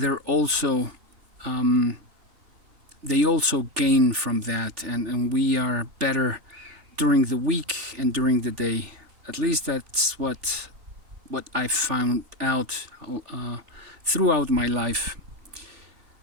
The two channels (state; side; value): late; left; 3.4 ms